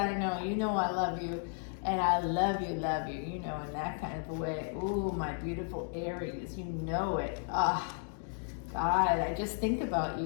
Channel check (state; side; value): silent; right; 55 dB below the other